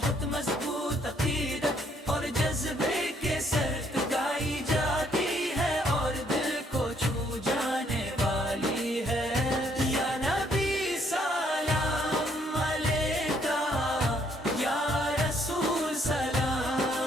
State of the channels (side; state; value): both; normal; correlation 0.68